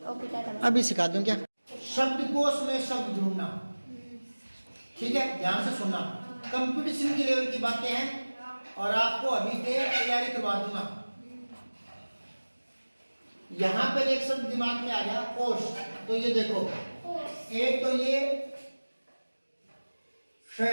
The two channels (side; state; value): both; inverted; correlation -1.00